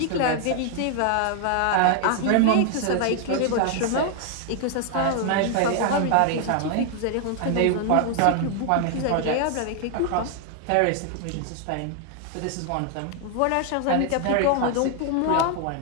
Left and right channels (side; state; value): both; different; correlation 0.00